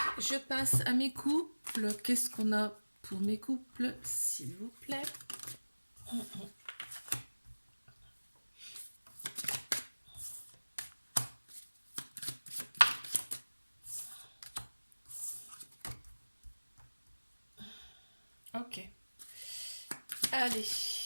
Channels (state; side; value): inverted; both; correlation -1.00